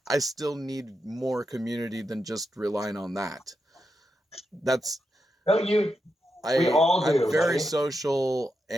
I still need more community than just relying on that. That's... we all do. I'm very social,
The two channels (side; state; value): both; normal; correlation 0.86